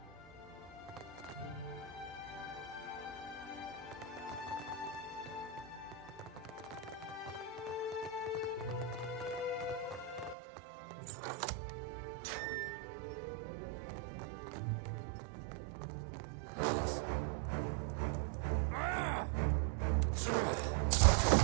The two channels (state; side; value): drops out; left; at 10.4 s